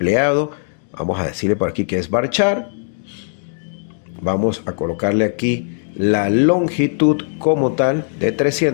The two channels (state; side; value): silent; right; digital silence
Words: Vamos a decirle por aquí que es varchar. Vamos a colocarle aquí la longitud como tal de